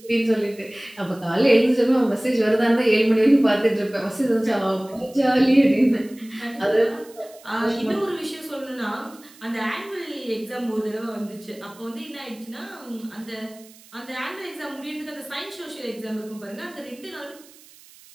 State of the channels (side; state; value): right; noise; hiss, 24 dB below the sound